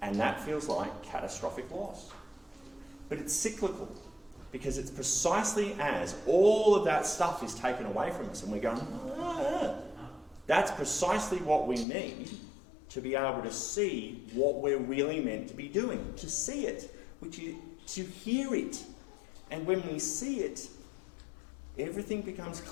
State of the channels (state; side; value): drops out; right; at 11.9 s